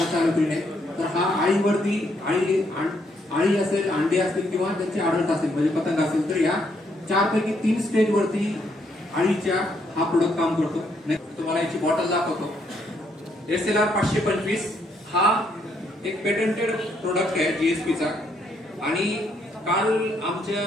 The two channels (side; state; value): both; normal; correlation 0.73